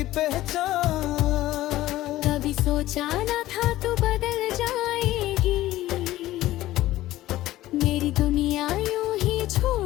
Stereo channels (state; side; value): quieter; right; 15.6 dB